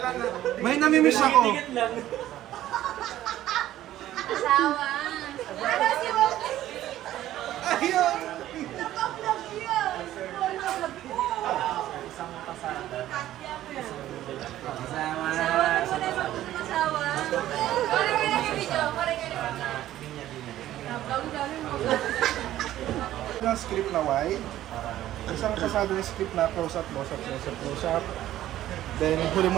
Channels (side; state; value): left; quieter; 13.5 dB